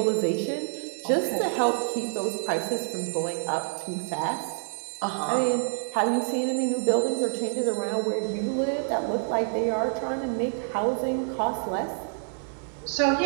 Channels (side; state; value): left; silent; digital silence